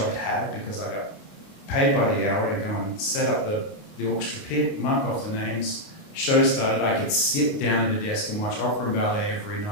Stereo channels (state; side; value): late; right; 29 ms